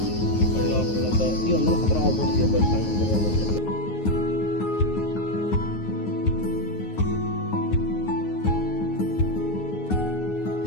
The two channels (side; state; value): right; late; 9.5 ms